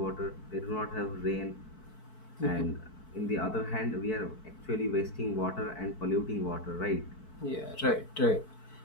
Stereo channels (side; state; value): right; late; 4.6 ms